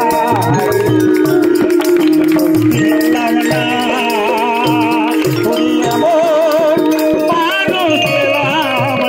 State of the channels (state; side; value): identical; both; correlation 1.00